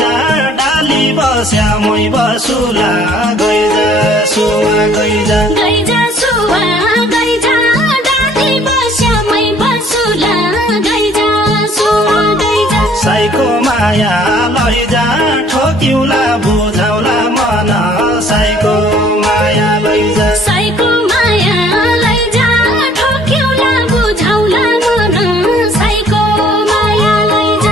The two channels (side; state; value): both; normal; correlation 0.57